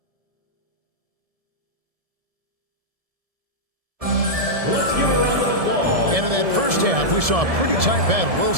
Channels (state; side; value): late; left; 1.7 ms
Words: And in that first half, we saw a pretty tight battle. We'll